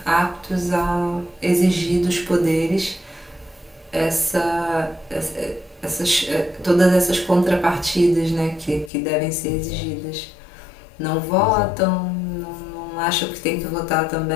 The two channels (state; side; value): drops out; right; at 8.9 s